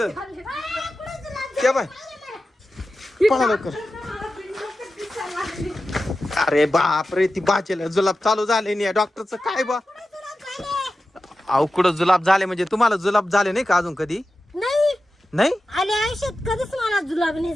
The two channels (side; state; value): both; normal; correlation 0.93